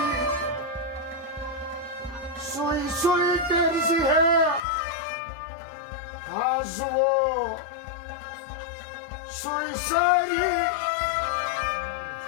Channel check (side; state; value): right; drops out; at 4.6 s